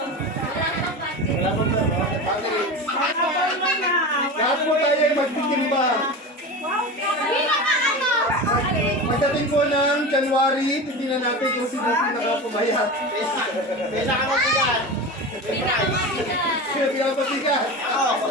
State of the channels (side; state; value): both; normal; correlation 0.27